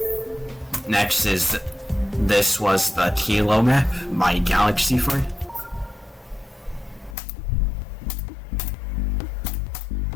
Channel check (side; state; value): right; drops out; at 7.2 s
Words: Next is This Was the Kilo Map by Galaxy Ford.